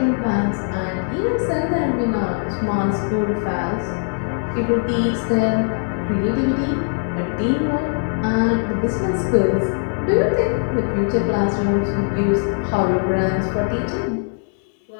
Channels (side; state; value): right; silent; 60 dB below the other